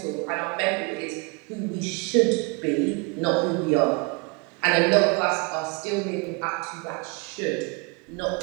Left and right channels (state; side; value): quieter; left; 30.6 dB